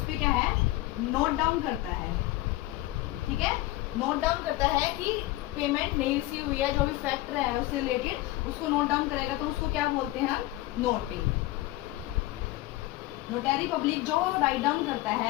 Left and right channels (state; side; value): quieter; right; 17.6 dB